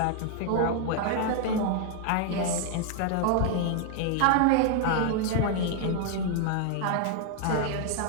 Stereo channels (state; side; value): different; both; correlation 0.00